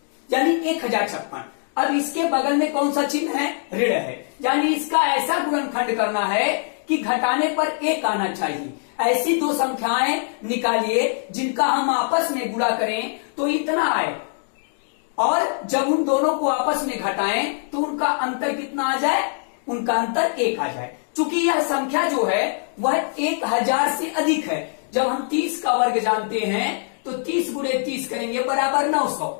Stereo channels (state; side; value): silent; right; digital silence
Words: यानी 1056। अब इसके बगल में कौन सा चिन्ह है, ऋण है, यानी इसका ऐसा गुणनखंड करना है कि घटाने पर एक आना चाहिए। ऐसी दो संख्याएं निकालिए जिनका हम आपस में गुणा करें तो इतना आए, और जब उन दोनों को आपस में घटाएं तो उनका अंतर कितना आ जाए, उनका अंतर 1 आ जाए। चूंकि यह संख्या जो है वह 1000 से अधिक है। जब हम 30 का वर्ग जानते हैं तो 30 गुणे 30 करेंगे बराबर 900,